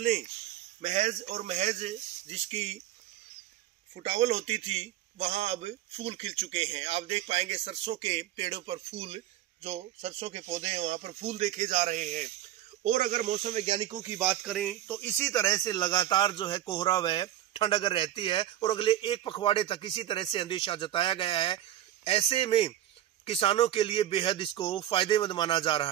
महज और महज जिसकी फुटावल होती थी, वहां अब फूल खिल चुके हैं। आप देख पाएंगे सरसों के पेड़ों पर फूल, जो सरसों के पौधे हैं वहां पर फूल देखे जा रहे हैं। और अगर मौसम वैज्ञानिकों की बात करें तो इसी तरह से लगातार जो है कोहरा व ठंड अगर रहती है और अगले एक पखवाड़े तक इसी तरह से अंदेशा जताया गया है, ऐसे में किसानों के लिए बेहद इसको फायदेमंद माना जा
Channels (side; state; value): left; quieter; 12.6 dB